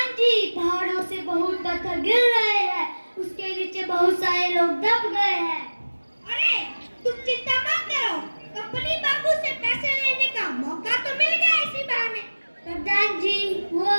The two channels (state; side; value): inverted; both; correlation -1.00